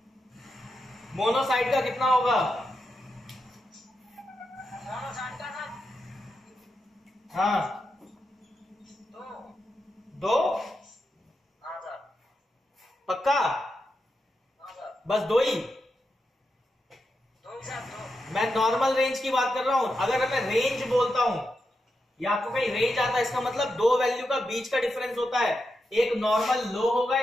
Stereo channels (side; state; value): both; normal; correlation 0.87